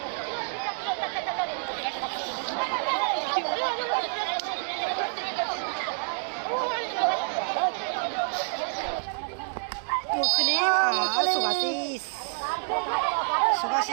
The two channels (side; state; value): left; silent; digital silence